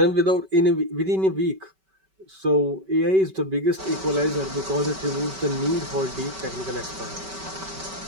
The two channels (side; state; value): left; late; 5.2 ms